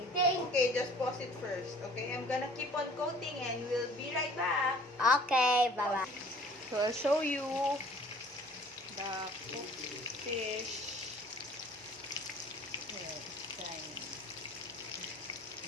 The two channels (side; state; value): both; normal; correlation 0.51